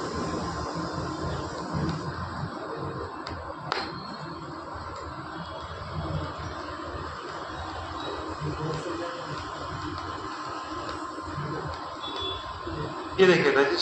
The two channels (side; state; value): both; identical; correlation 1.00